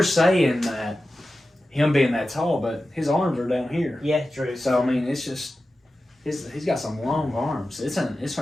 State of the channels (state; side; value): normal; both; correlation 0.93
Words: saying that him being that tall, but his arms are down here. Yeah, true. So I mean, it's just he's got some long arms. It's